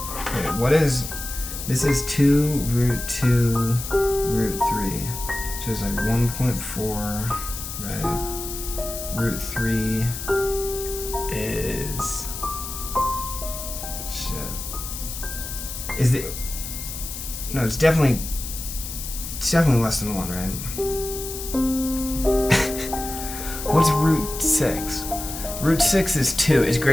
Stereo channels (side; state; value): left; noise; hiss, 8 dB below the sound